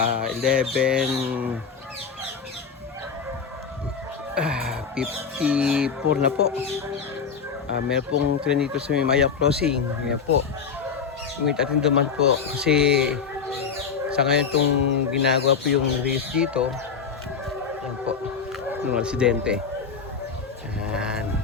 11 54 na po. Meron pong train dito sa Maya Crossing. Yan po. Wait natin duman po kasi sa ngayon itong ginagawa po yung race dito. Yan po. Yung aksidente. Yan.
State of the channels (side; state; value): right; quieter; 6.0 dB